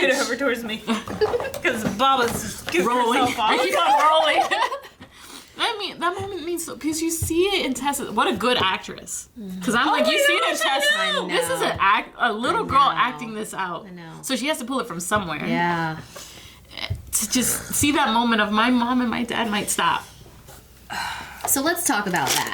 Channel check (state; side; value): identical; both; correlation 1.00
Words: over towards me. Because Baba's scooting herself off. I keep on rolling. I mean, that moment means so, because you see it in Tess. What a good actress. Because I'm like, you see it in Tess. I know. This is a little girl acting this out. I know. So she has to pull it from somewhere. Yeah. To just see that moment of my mom and my dad might stop. So let's talk about